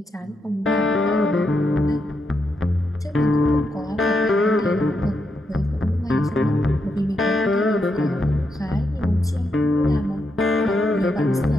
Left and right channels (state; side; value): normal; both; correlation 0.82